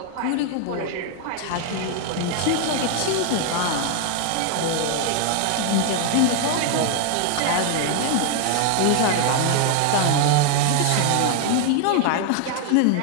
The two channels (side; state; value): both; different; correlation 0.00